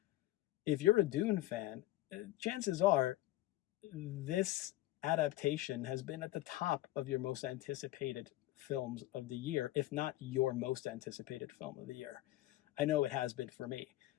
If you're a Dune fan, chances are this adaptation has been at the top of your most anticipated films of the year, if not your most anticipated film of the year. I know it has been for me.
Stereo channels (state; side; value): quieter; right; 16.1 dB